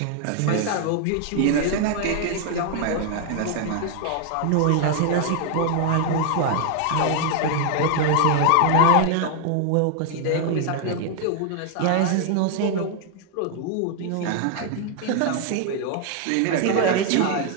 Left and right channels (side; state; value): both; different; correlation 0.00